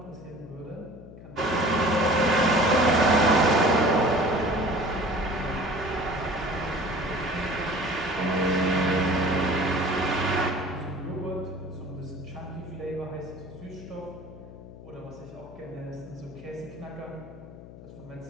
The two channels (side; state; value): left; noise; hum, 16 dB below the sound